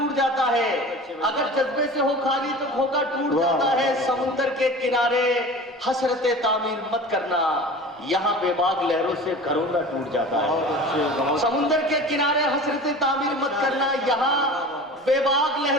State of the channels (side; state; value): both; normal; correlation 0.38